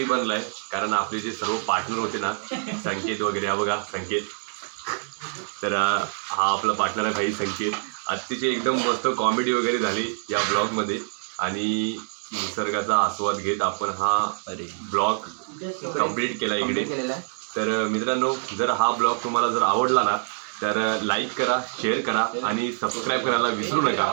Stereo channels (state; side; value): silent; left; digital silence